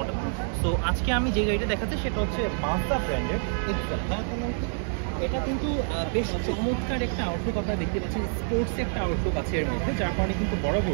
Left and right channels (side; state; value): left; silent; 60 dB below the other